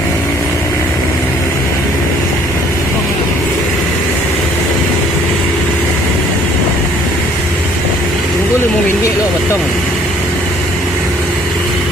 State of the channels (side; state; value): both; normal; correlation 0.59